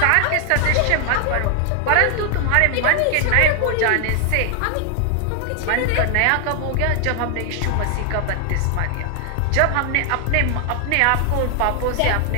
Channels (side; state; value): both; different; correlation 0.00